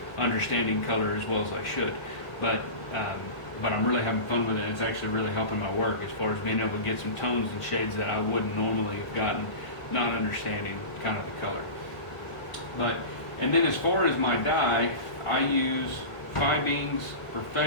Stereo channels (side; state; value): right; late; 1.6 ms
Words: understanding color as well as I should. But I'm really having fun with it. It's actually really helping my work as far as being able to get some tones and shades that I wouldn't normally have gotten, not understanding kind of the color. And then as far as my dye, I use Fibeens